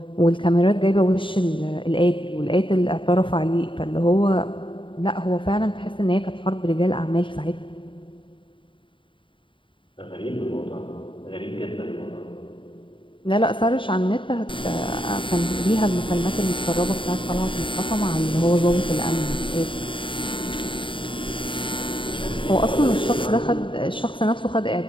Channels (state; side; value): late; right; 0.24 ms